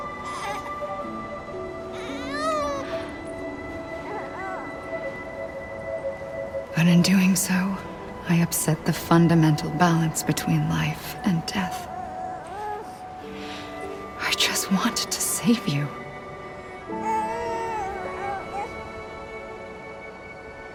But in doing so, I upset the fundamental balance between life and death. I just wanted to save you.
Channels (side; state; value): both; identical; correlation 1.00